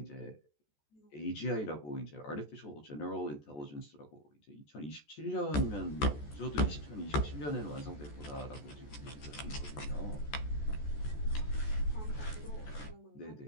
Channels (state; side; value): late; right; 14 ms